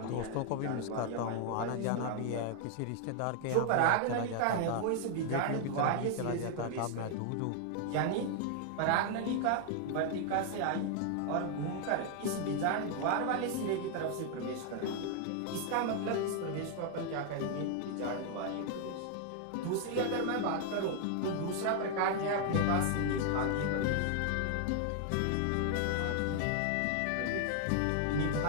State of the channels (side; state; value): both; different; correlation 0.00